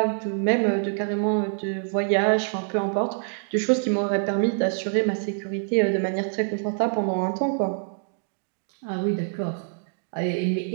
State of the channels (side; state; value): left; silent; digital silence